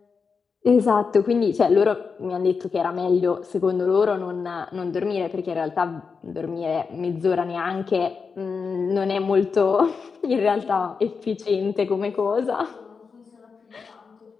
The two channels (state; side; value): quieter; right; 5.3 dB